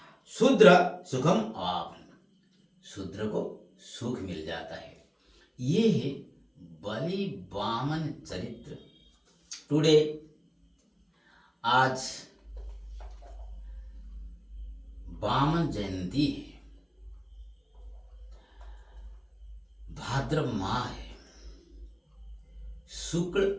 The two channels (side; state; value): both; identical; correlation 1.00